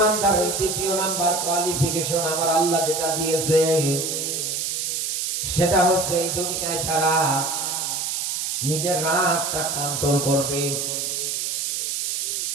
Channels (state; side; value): noise; right; hiss, 1 dB below the sound